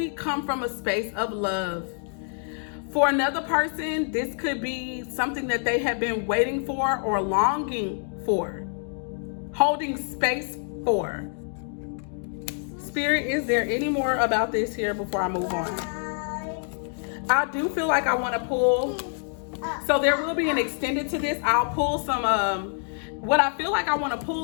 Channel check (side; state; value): right; silent; 61 dB below the other